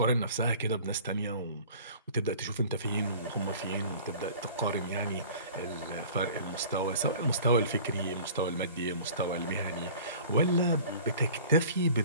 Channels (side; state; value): both; inverted; correlation -0.45